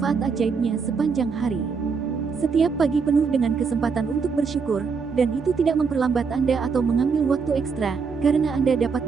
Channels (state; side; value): quieter; left; 5.4 dB